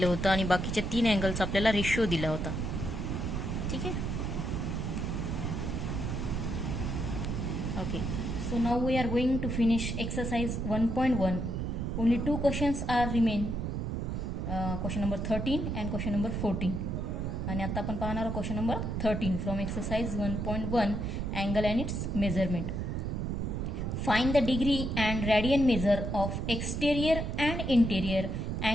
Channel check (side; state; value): right; noise; rumble, 2 dB below the sound